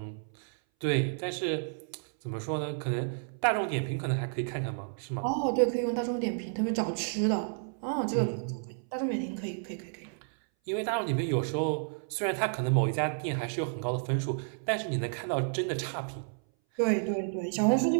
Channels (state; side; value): silent; left; 57 dB below the other